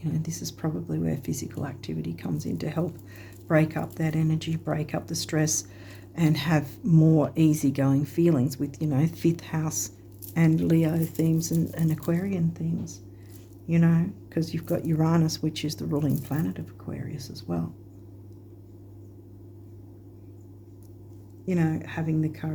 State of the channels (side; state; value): both; identical; correlation 1.00